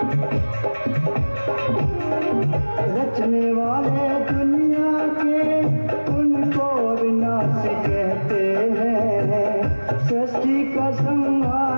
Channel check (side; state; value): both; inverted; correlation -1.00